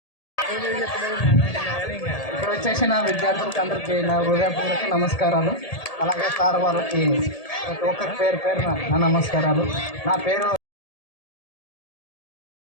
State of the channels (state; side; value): late; right; 1.8 ms